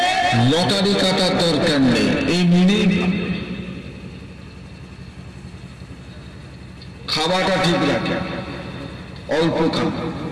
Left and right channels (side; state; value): both; identical; correlation 1.00